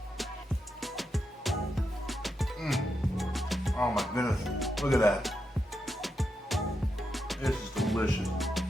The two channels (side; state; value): both; normal; correlation 0.85